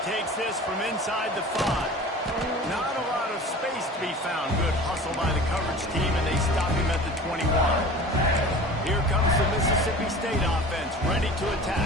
takes this from inside the 5. Not a lot of space to be found. Good hustle by the coverage team, and they stop him at the 21. Here comes the Mississippi State offense, ready to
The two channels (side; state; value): both; normal; correlation 0.39